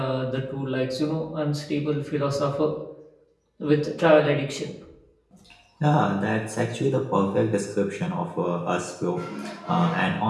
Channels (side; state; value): both; identical; correlation 1.00